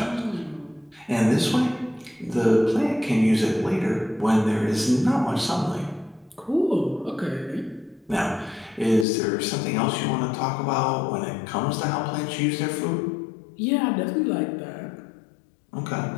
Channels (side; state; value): right; drops out; at 9.1 s